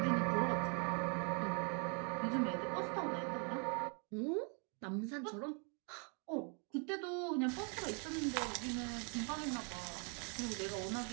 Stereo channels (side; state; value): left; quieter; 37.9 dB